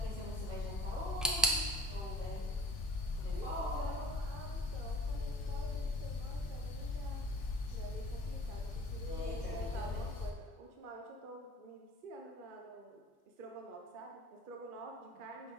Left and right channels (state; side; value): normal; both; correlation 0.47